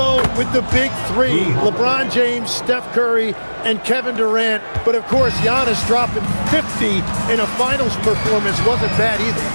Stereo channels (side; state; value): both; inverted; correlation -1.00